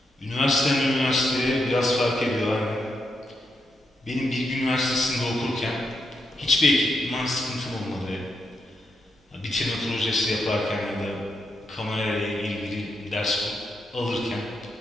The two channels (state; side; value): normal; both; correlation 0.82